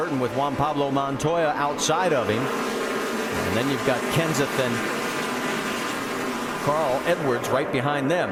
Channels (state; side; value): identical; both; correlation 1.00